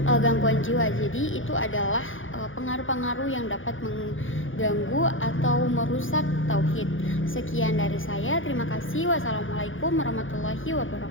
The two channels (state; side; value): late; right; 0.58 ms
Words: gangguan jiwa. Jadi itu adalah pengaruh-pengaruh yang dapat mengganggu atau merusak tauhid. Sekian dari saya, terima kasih. Wassalamualaikum warahmatullahi